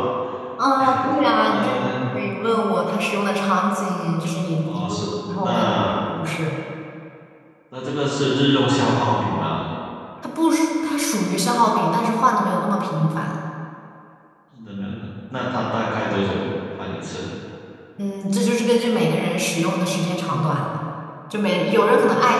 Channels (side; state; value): both; identical; correlation 1.00